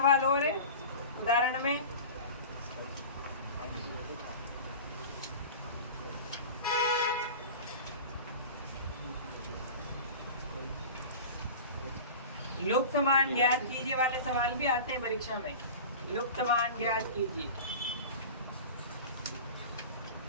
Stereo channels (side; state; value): both; inverted; correlation -0.34